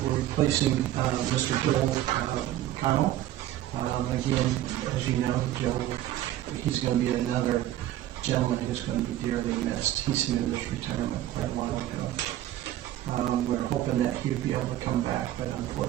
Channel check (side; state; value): left; quieter; 13.5 dB